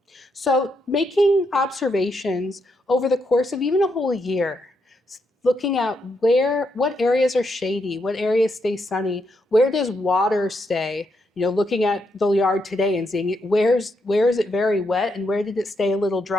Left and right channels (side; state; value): both; normal; correlation 0.80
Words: So making observations over the course of even a whole year, looking at what areas are shady, what areas stay sunny, where does water stay, looking at the yard today and seeing where is it very wet and where did it stay a little